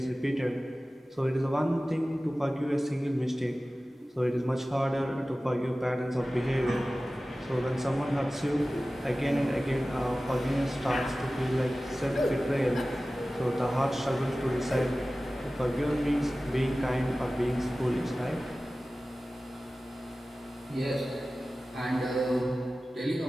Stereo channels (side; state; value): both; normal; correlation 0.96